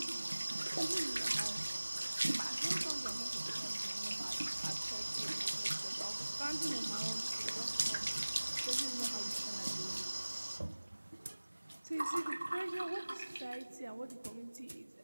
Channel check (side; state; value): both; inverted; correlation -1.00